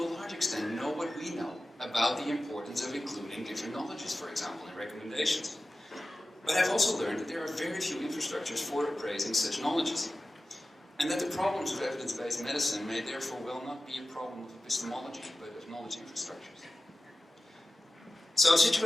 a large extent, know what we know about the importance of including different knowledges, for example, in recommendations. But I've also learned that there are very few infrastructures for appraising such knowledges, and that the problems of evidence-based medicine may therefore well not be a problem of epistemology, but of knowledge infrastructures. So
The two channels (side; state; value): both; normal; correlation 0.95